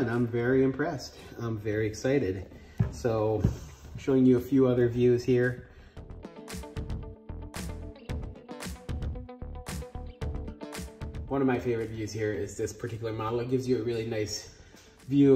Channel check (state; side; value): identical; both; correlation 1.00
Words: I'm very impressed. I'm very excited. So, showing you a few other views here. One of my favorite views here is this particular model. It gives you a really nice view